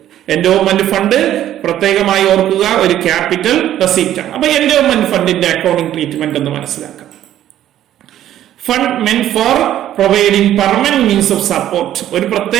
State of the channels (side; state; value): left; quieter; 12.1 dB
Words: എൻഡോമെന്റ് ഫണ്ട് പ്രത്യേകമായി ഓർക്കുക ഒരു ക്യാപിറ്റൽ റെസീപ്റ്റ് ആണ്. അപ്പൊ എൻഡോമെന്റ് ഫണ്ടിന്റെ അക്കൗണ്ടിംഗ് ട്രീറ്റ്മെന്റ് എന്ന് മനസ്സിലാക്കാം. Fund മെന്റ് four providing permanent means of support. ഒരു